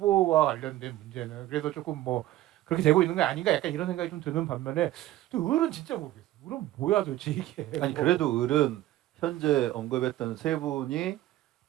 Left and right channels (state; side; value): quieter; left; 14.9 dB